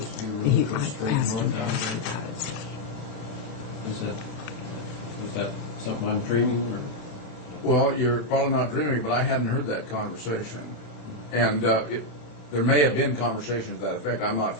to be a He, road goes I straight asked him north out about there? it. Is that something I'm dreaming, or? Well, you're probably not dreaming, but I hadn't heard that conversation. And there may have been conversations to that effect. I'm not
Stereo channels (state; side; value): late; right; 27 ms